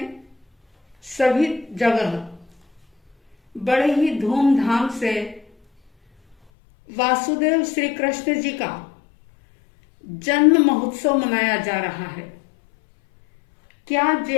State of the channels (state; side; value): drops out; right; at 6.4 s